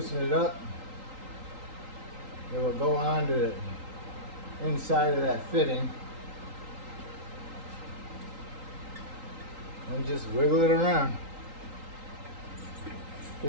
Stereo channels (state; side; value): late; left; 3.8 ms